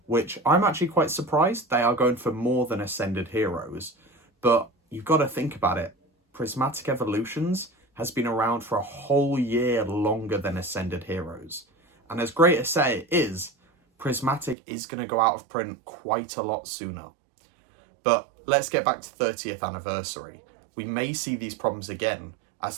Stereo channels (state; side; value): drops out; left; at 14.6 s